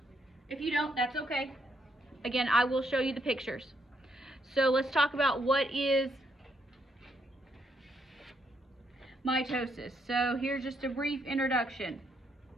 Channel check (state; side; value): normal; both; correlation 0.75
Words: If you don't, that's okay. Again, I will show you the pictures. So let's talk about what is mitosis. So here's just a brief introduction.